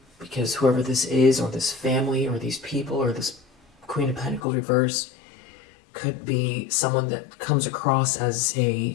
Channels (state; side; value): drops out; right; at 4.4 s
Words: because whoever this is, or this family, or these people, or this Queen of Pentacles reverse, could be someone that comes across as